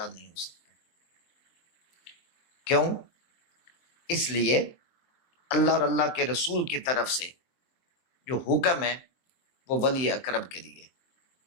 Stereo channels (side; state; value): right; late; 23 ms